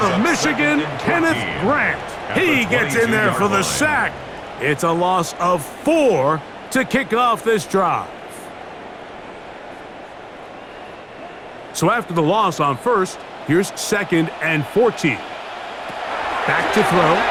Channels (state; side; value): identical; both; correlation 1.00